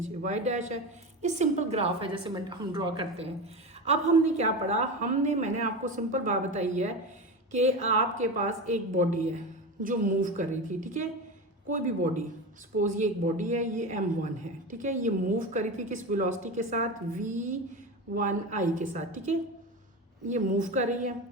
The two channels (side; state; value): both; normal; correlation 0.23